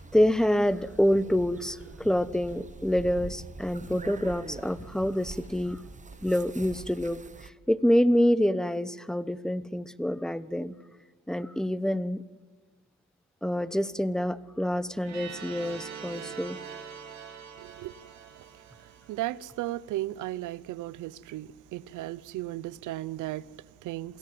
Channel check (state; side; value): normal; both; correlation 0.91